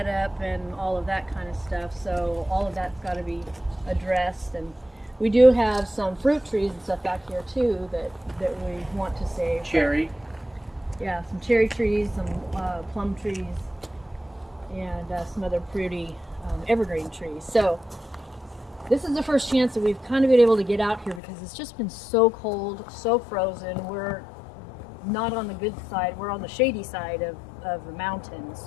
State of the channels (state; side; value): drops out; right; at 21.2 s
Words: and all of that kind of stuff. So all of that's got to be addressed, and we do have some fruit trees and stuff back here too that we want to save. Cherry. Yeah, some cherry trees, some plum trees, and some other pretty evergreen trees. So this is the first chance that we've kind of been able to get out here because it's just been so cold, so frozen. We're not on the good side. We're on the shady side of the mountain.